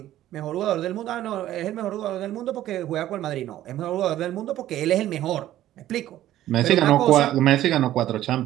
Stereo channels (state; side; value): quieter; left; 13.4 dB